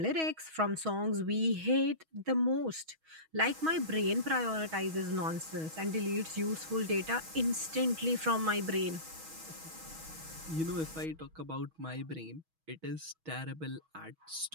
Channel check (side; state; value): left; late; 6.2 ms